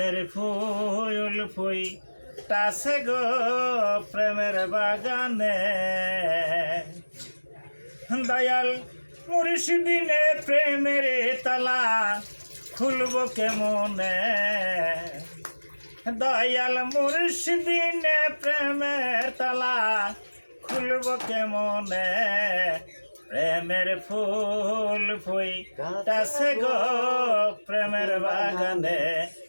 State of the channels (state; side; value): inverted; both; correlation -1.00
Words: ফুল তাসে গো প্রেমের বাগানে দয়াল মুর্শিদিনে প্রেমের তালা খুলব কেমনে দয়াল মুর্শিদিনে প্রেমের তালা খুলব কেমনে প্রেমের ফুল ফুইতাছে গো প্রেমের বাগানে